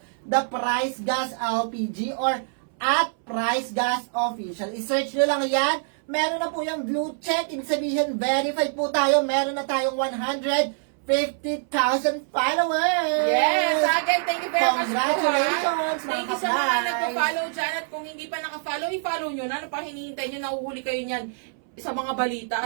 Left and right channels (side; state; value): left; silent; 61 dB below the other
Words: the Price Gas LPG or at Price Gas Official. I-search nyo lang yan. Meron na po yung blue check. Ibig sabihin, verified po tayo. Meron na tayong 150,000 followers. Yes, again, thank you very much po. Congratulations, Thank you mga sa mga ka-price. nagpa-follow dyan. At kung hindi pa naka-follow, i-follow nyo na. Ano pa hinihintay nyo? Nahuhuli kayo niyan sa mga balita